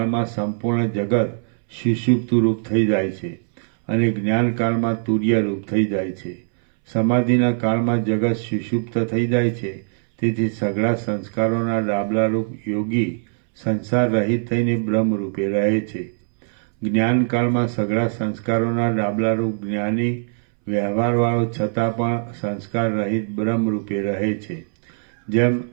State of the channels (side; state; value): left; silent; 65 dB below the other